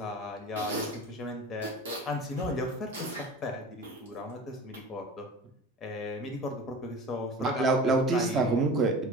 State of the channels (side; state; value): both; normal; correlation 0.38